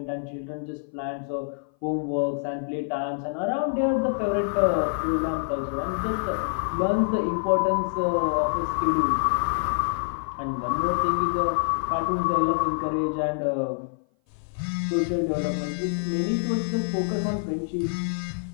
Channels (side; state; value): right; silent; 57 dB below the other